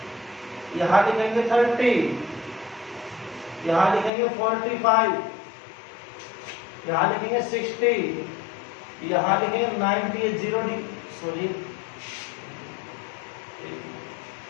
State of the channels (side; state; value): right; drops out; at 4.1 s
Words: यहां लिखेंगे 30, यहां लिखेंगे 45, यहां लिखेंगे 60, यहां लिखेंगे 90, 0 सॉरी